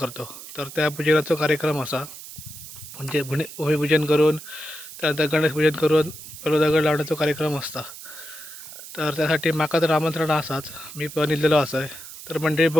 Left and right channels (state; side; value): noise; right; hiss, 14 dB below the sound